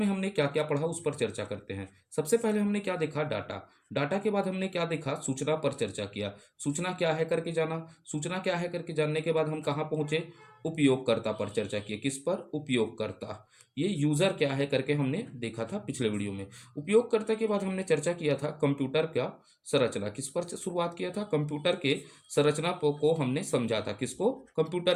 हमने क्या क्या पढ़ा उस पर चर्चा करते हैं। सबसे पहले हमने क्या देखा, डाटा। डाटा के बाद हमने क्या देखा, सूचना पर चर्चा किया। सूचना क्या है करके जाना। सूचना क्या है करके जानने के बाद हम कहाँ पहुंचे, उपयोगकर्ता पर चर्चा की। किस पर, उपयोगकर्ता। ये यूजर क्या है करके हमने देखा था पिछले वीडियो में। उपयोगकर्ता के बाद हमने चर्चा किया था कंप्यूटर का संरचना। किस पर शुरुआत किया था, कंप्यूटर के संरचना को हमने समझा था। किसको, कंप्यूटर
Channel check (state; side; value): identical; both; correlation 1.00